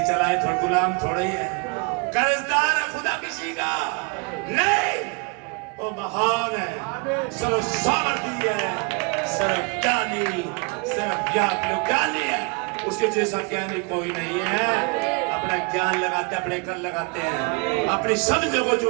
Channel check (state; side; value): quieter; left; 31.1 dB